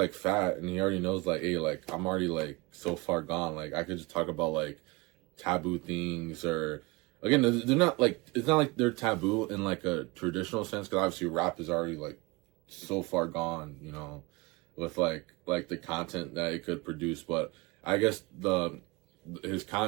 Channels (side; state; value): left; quieter; 24.2 dB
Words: fat and he already knows like, hey, like I'm already like so far gone, like I could just talk about like taboo things or again, they're not like, it's not like they're taboo in like a traditional sense because obviously rap is already like so far gone, you know, with like the content that it could produce. But I guess his